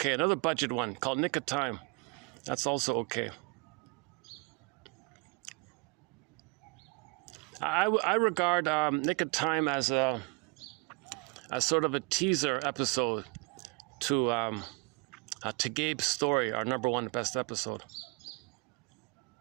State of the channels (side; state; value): left; quieter; 30.2 dB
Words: Another budget one called Nick of Time. That's also okay. I regard Nick of Time as sort of a teaser episode to Gabe's Story, our number 1 best episode.